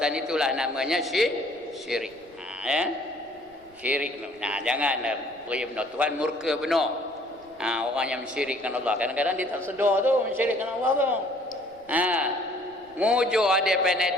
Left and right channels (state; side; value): noise; right; rumble, 29 dB below the sound